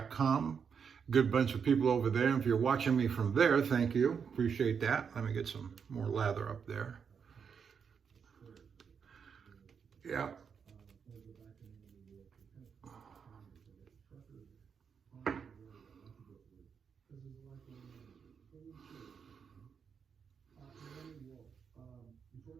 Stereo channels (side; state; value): left; quieter; 6.6 dB